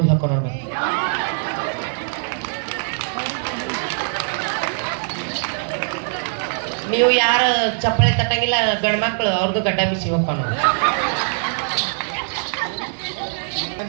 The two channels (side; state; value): left; silent; 65 dB below the other